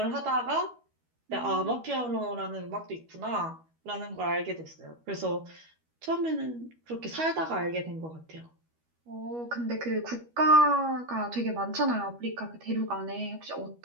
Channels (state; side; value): late; left; 12 ms